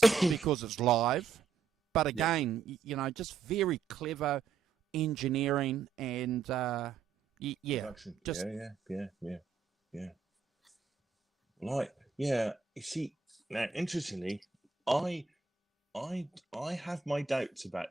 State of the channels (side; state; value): left; quieter; 5.5 dB